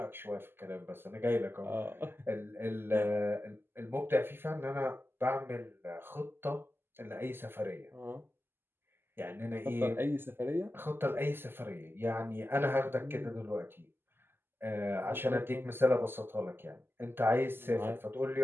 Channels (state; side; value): late; left; 0.11 ms